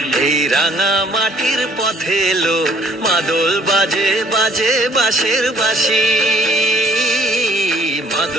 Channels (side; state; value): both; normal; correlation 0.60